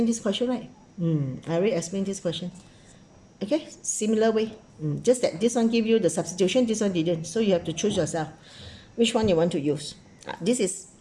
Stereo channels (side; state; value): both; identical; correlation 1.00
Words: this question, right? I already explained this question. Okay, similar way. Just that this one give you the substitution, this one didn't. So you have to choose yourself which one you want to use. This is